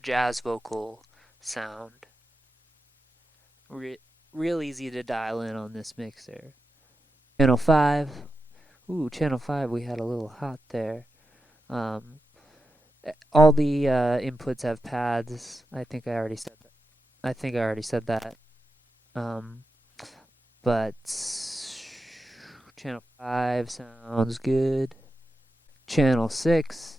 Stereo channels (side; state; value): both; normal; correlation 0.89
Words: jazz vocal sound. Real easy to dial in on this mixer. Channel 5. Ooh, channel 5, we had a little hot there. All the inputs have pads. I think I already said that. But channel 5 sounds good. Channel 6